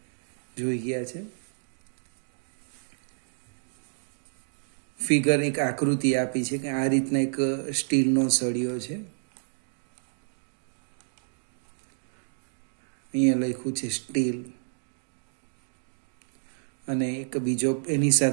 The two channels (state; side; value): silent; left; digital silence